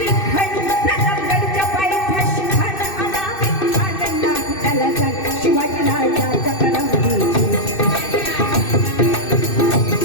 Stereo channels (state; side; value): late; right; 2.6 ms